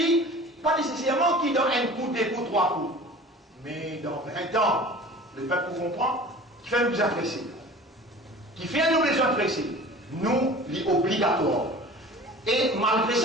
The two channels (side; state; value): both; normal; correlation 0.42